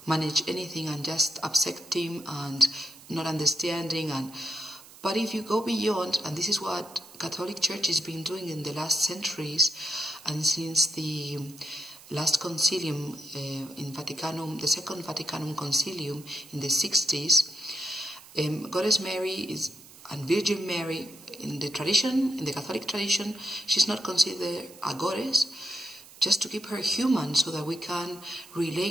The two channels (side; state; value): right; noise; hiss, 20 dB below the sound